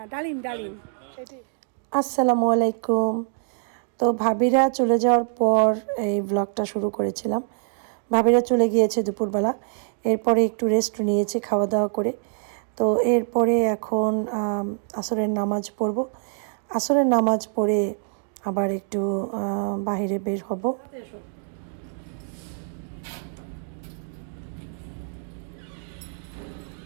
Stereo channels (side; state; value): left; silent; digital silence